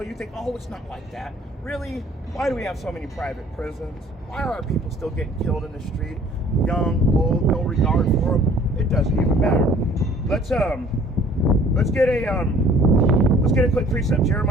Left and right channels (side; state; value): both; normal; correlation 0.54